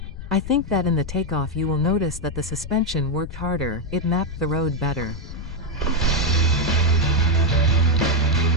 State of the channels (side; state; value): left; noise; rumble, 10 dB below the sound